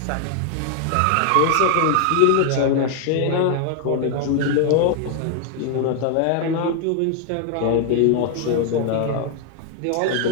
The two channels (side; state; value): both; different; correlation 0.00